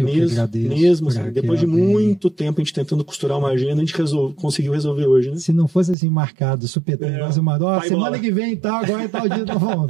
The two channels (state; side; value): drops out; left; at 6.0 s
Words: que agradeço. Mesmo assim, depois de muito tempo a gente tentando costurar uma agenda, a gente conseguiu resolver hoje, né? Se não fosse assim marcado, supetão, semana que vem e tal, agora é tal dia, então